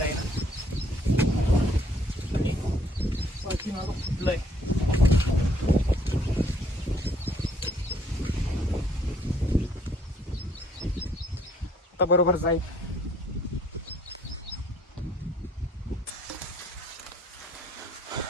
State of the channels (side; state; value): both; normal; correlation 0.64